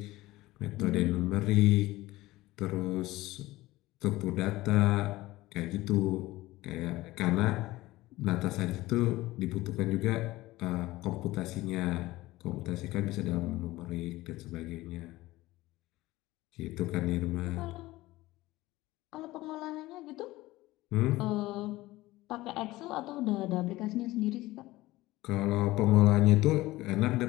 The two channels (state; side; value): quieter; right; 18.3 dB